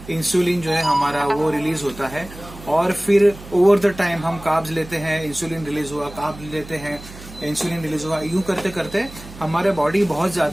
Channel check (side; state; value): right; noise; hum, 16 dB below the sound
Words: इंसुलिन जो है हमारा वो रिलीज होता है और फिर ओवर द टाइम हम कार्ब्स लेते हैं, इंसुलिन रिलीज हुआ, कार्ब्स लेते हैं, इंसुलिन रिलीज हुआ, यूं करते करते हमारे बॉडी बहुत